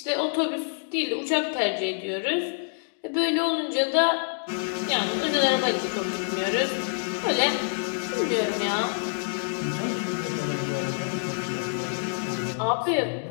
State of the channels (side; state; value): right; silent; digital silence